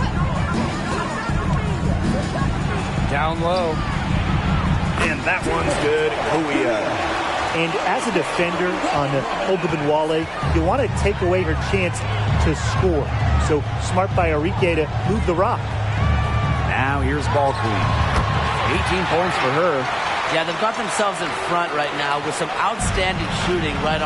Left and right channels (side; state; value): both; identical; correlation 1.00